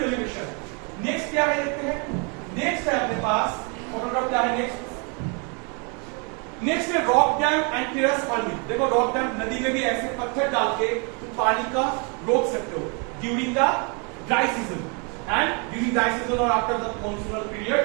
elevation. Next क्या है देखते हैं। नेक्स्ट है अपने पास फोटोग्राफ, क्या है नेक्स्ट है rock dam and terrace farming. देखो रॉक डैम, नदी में भी ऐसे पत्थर डाल के तुम पानी का रोक सकते हो during the dry season and during dry season और after the monsoonal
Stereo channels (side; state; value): left; quieter; 34.6 dB